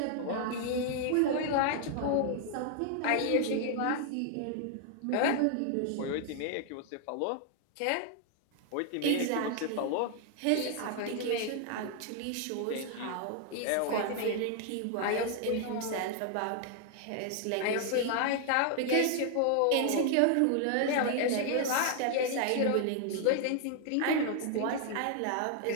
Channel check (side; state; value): both; different; correlation 0.00